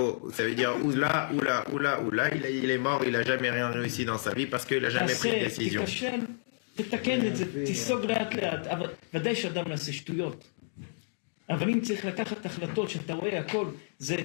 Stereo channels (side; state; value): right; silent; digital silence